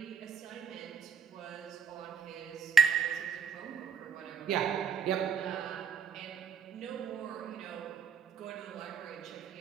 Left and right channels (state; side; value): quieter; left; 6.6 dB